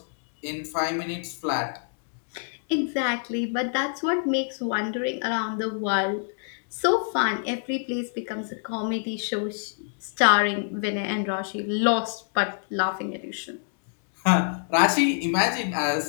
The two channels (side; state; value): right; silent; digital silence